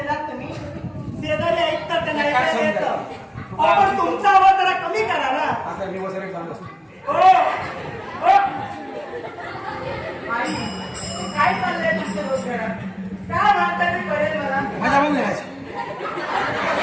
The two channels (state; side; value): identical; both; correlation 1.00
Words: तुम्ही? शेजारी ऐकतात त्यांना ऐकायला येतं. पण तुमचा आवाज जरा कमी करा ना. आता मी वसरे जात असतो. आई, काय चाललंय तुमच्या डोक्यात? काय म्हणता ते कळेल मला. माझ्या पण नाही